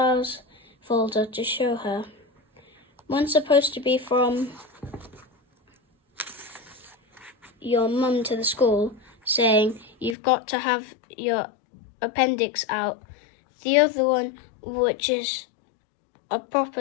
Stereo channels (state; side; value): drops out; right; at 10.2 s